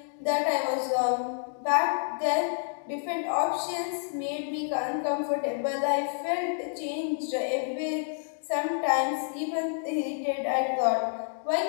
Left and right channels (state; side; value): silent; right; digital silence